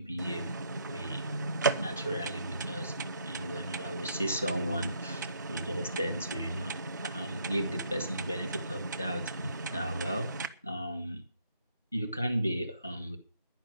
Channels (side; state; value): both; inverted; correlation -0.70